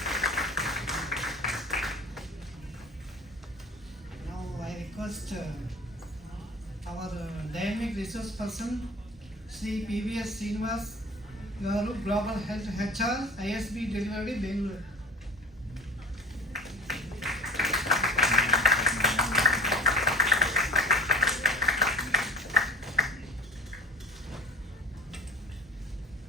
Now I request our dynamic resource person, Sri PVS Srinivas Garu, Global Health HR, ISB Delivery, Bangalore.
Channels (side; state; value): both; normal; correlation 0.40